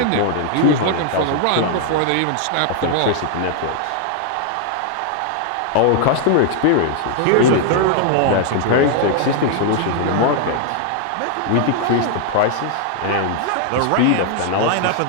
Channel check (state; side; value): different; both; correlation 0.00